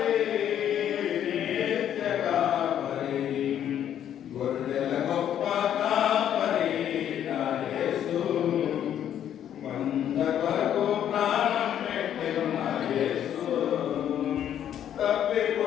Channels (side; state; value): right; quieter; 10.1 dB